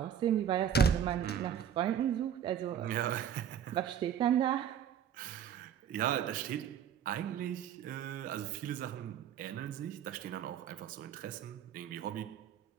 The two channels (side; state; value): left; quieter; 9.0 dB